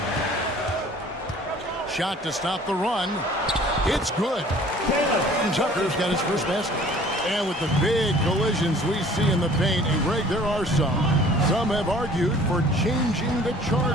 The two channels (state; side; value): normal; both; correlation 0.51